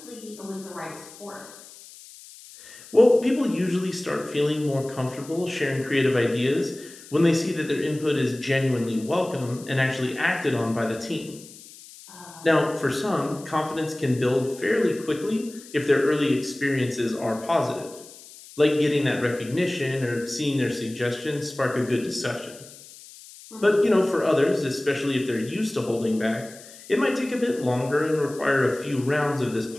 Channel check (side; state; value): left; noise; hiss, 19 dB below the sound